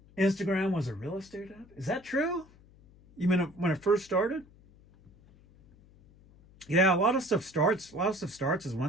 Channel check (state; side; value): noise; left; hum, 26 dB below the sound